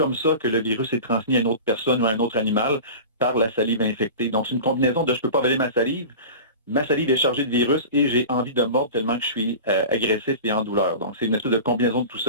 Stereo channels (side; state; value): both; inverted; correlation -0.33